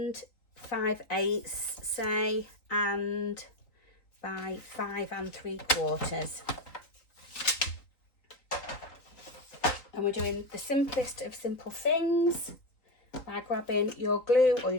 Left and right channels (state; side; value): late; right; 3.9 ms